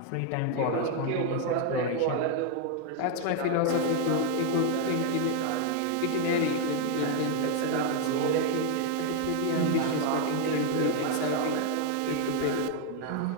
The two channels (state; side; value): different; both; correlation 0.00